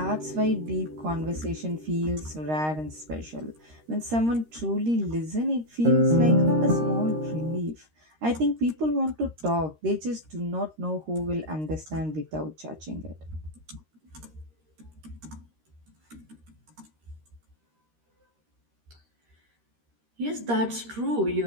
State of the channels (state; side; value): late; left; 13 ms